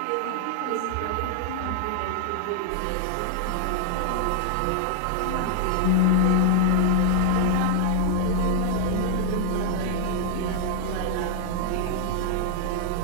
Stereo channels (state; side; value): different; both; correlation 0.00